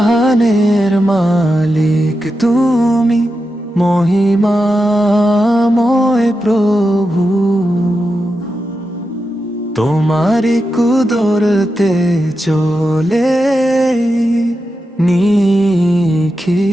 মালিক তুমি, মহিমাময় প্রভু। তোমারি কুদরতে চলে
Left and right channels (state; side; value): normal; both; correlation 0.89